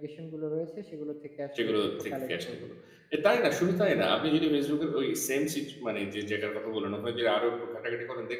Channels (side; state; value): both; identical; correlation 1.00